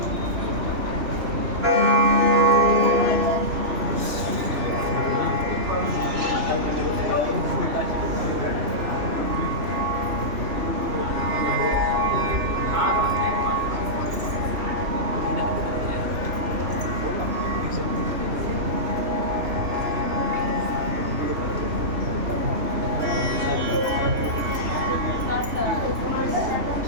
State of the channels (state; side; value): late; left; 3.1 ms